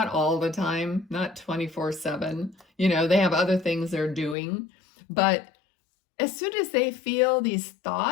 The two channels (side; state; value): right; drops out; at 4.4 s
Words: all the time, not 24/7. They have other things they're doing. But as soon as they feel these